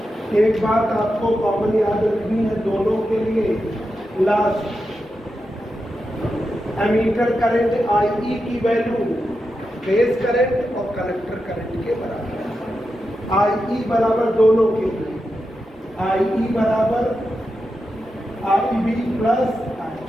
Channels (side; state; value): both; normal; correlation 0.88